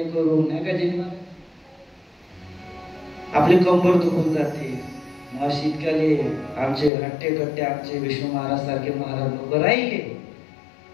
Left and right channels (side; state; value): right; drops out; at 6.9 s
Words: करू नाही का जेव्हा आपली कंबर दुखून जाते. मग शीतकाली आमचे हट्टे कट्टे आमचे विष्णू महाराज सारखे महाराज लोक राहिले